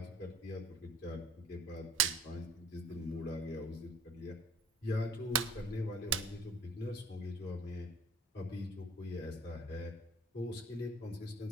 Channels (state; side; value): normal; both; correlation 0.49